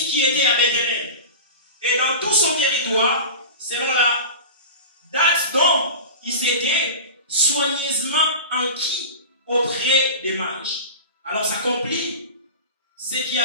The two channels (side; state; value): both; inverted; correlation -0.30